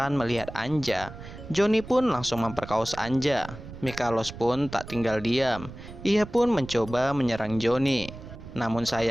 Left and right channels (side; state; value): right; noise; rumble, 13 dB below the sound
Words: melihat Anja, Johnny pun langsung memperkaos Anja. Mikalos pun tak tinggal diam. Ia pun mencoba menyerang Johnny. Namun